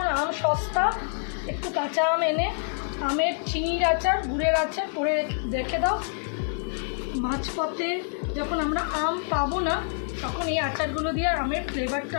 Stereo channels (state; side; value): silent; right; digital silence